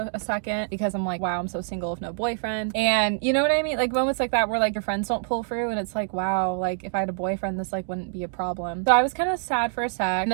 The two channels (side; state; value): left; silent; digital silence